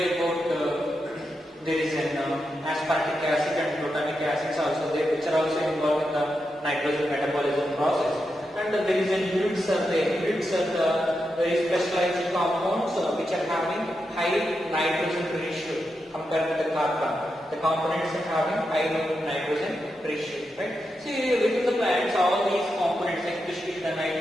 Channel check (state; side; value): normal; both; correlation 0.87